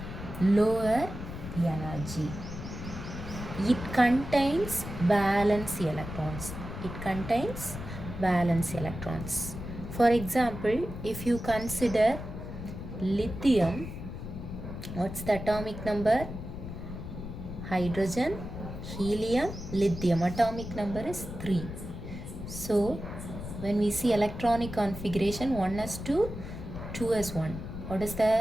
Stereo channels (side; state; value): left; noise; rumble, 9 dB below the sound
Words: lower energy. It contains valence electrons. It contains valence electrons. For example, if you consider lithium, what's the atomic number? Hydrogen, helium, lithium. Atomic number is 3. So, when we see electronic configuration, 1s2, 2s1. What is